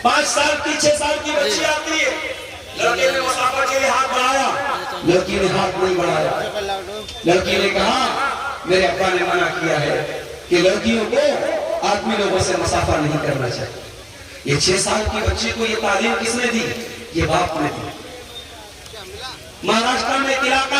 5 سال کی 6 سال کی بچی آتی ہے، لڑکے نے مسافہ کے لیے ہاتھ بڑھایا، لڑکی نے ہاتھ نہیں بڑھایا، لڑکی نے کہا میرے ابا نے منع کیا ہے کہ لڑکیوں کو آدمی لوگوں سے مسافہ نہیں کرنا چاہیے۔ یہ 6 سال کی بچی کو یہ تعلیم کس نے دی؟ یہ باپ نے دی۔ مہاراشٹر میں ایک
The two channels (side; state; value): both; identical; correlation 1.00